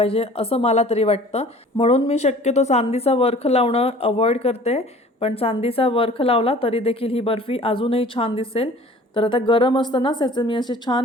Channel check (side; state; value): both; normal; correlation 0.48